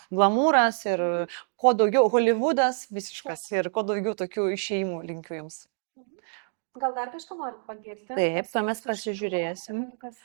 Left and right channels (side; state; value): left; silent; digital silence